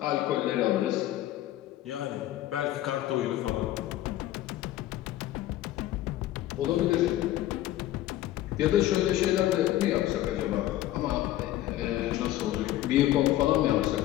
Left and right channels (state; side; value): quieter; right; 14.3 dB